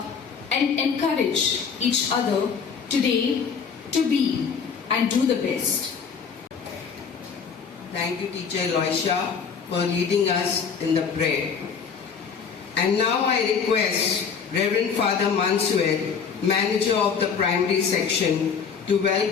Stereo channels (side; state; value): right; quieter; 6.3 dB